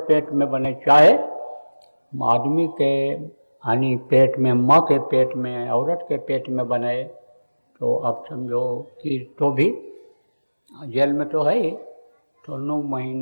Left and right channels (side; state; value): both; inverted; correlation -1.00